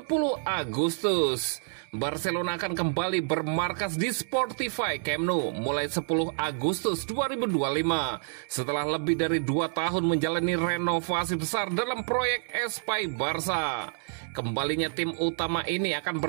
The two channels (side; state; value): left; silent; 59 dB below the other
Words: Agustus. Barcelona akan kembali bermarkas di Sportify Camp Nou mulai 10 Agustus 2025 setelah lebih dari 2 tahun menjalani renovasi besar dalam proyek Espai Barça. Kembalinya tim utama ini akan